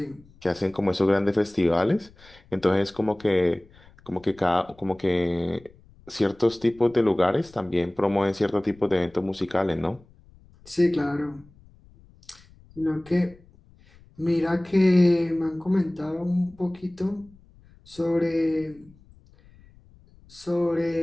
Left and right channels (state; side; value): noise; left; rumble, 26 dB below the sound